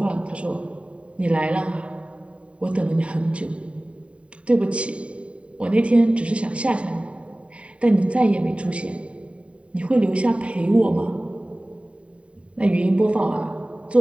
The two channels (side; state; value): left; late; 0.062 ms